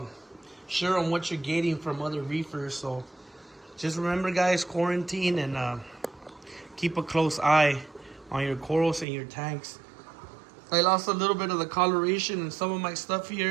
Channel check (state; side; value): drops out; left; at 9.1 s